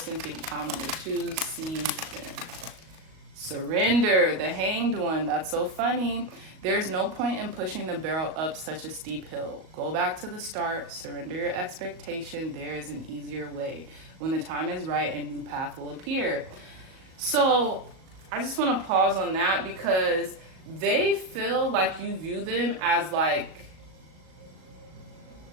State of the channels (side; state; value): left; late; 38 ms